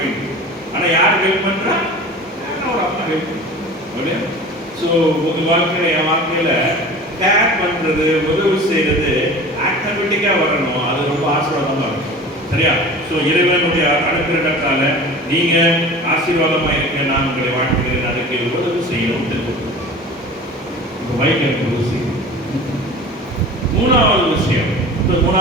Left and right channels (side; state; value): both; normal; correlation 0.38